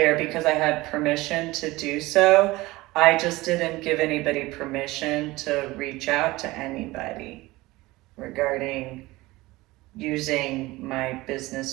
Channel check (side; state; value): left; quieter; 20.0 dB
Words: because I had permission to do so. I just didn't give anybody permission to reach out to anybody regarding using my